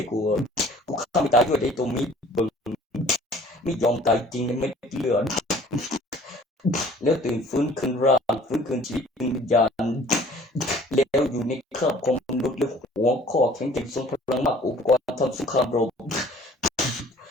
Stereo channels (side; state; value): both; normal; correlation 0.52